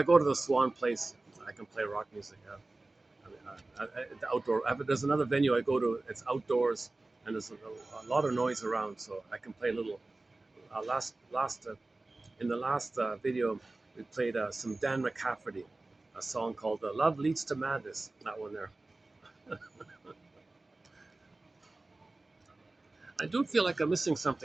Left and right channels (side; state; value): left; quieter; 3.0 dB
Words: go to the Swan place, I can play rock music. The outdoor. There's another venue I go to. It's outdoors, and there's a lot of noise around, so I can play a little. Last In the last video, we played some Dan McCafferty, a song called "Love Leads to Madness." That one there. I do feel like I'm missing